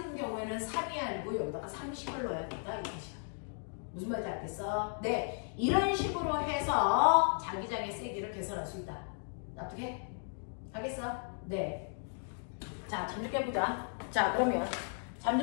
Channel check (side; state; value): right; silent; 54 dB below the other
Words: 경우에는 3이 아니고 여기다가 30을 넣어야 된다. 이 뜻이야. 무슨 말인지 알겠어? 네. 이런 식으로 해서 자기장의 세기를 계산할 수 있다. 납득해? 알겠어? 네. 자, 잠 좀 깨보자. 자, 그러면 잠